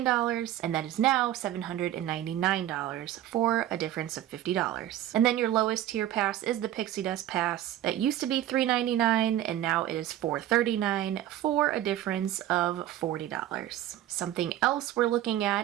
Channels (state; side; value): quieter; left; 12.6 dB